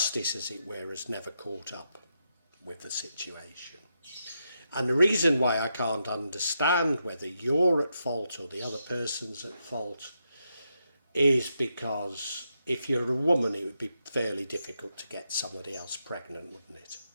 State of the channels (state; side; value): inverted; both; correlation -0.83